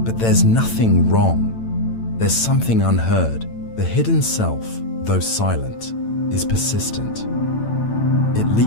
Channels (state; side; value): late; right; 8.9 ms